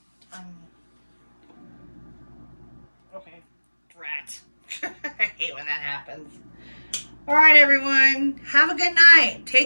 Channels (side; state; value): both; inverted; correlation -1.00